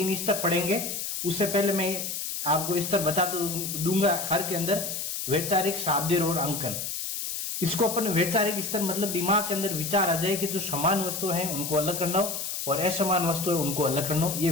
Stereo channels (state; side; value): noise; left; hiss, 4 dB below the sound